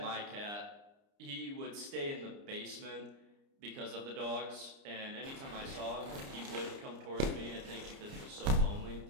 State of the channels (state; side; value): late; left; 29 ms